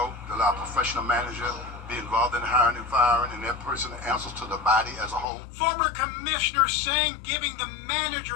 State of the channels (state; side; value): drops out; right; at 5.2 s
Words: to allow a professional manager be involved in hiring and firing, and that person answers to the body as a whole. Former commissioners saying giving the manager